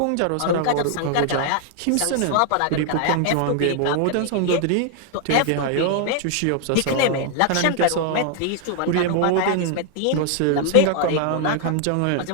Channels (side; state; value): both; different; correlation 0.00